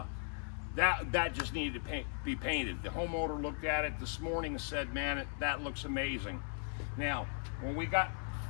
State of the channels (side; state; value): right; silent; 53 dB below the other